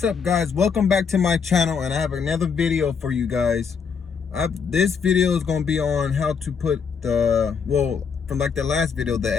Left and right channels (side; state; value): right; quieter; 6.2 dB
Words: up, guys? Welcome back to my channel, and I have another video for you guys. This video is going to be on how to put the, well, from like the last video, the